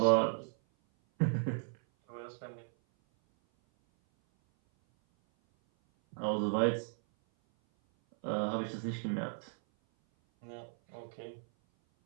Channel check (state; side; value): silent; left; 54 dB below the other